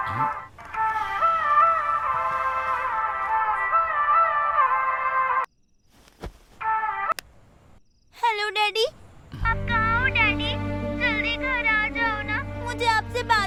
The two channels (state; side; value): identical; both; correlation 1.00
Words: हेलो डैडी, आप कहाँ हो डैडी? जल्दी घर आ जाओ ना, मुझे आपसे